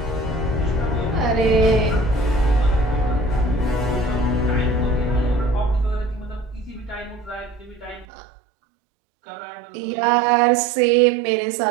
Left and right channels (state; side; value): drops out; left; at 8.1 s